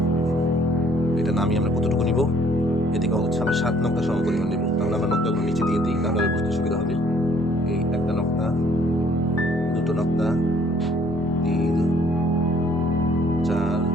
এটা নামিয়ে আমরা কতটুকু নিব, এদিকে হচ্ছে আমরা ৭ নকটা সম পরিমাণ নেব। তাহলে আমরা নকটাগুলো নিচে দিয়ে দিই, তাহলে বুঝতে সুবিধা হবে। এই একটা নকটা, দুটো নকটা, ৩, ৪,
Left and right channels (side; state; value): both; normal; correlation 0.61